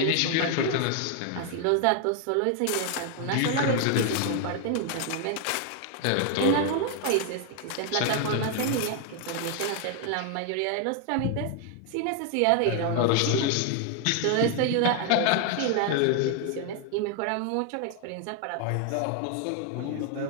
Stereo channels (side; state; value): both; different; correlation 0.00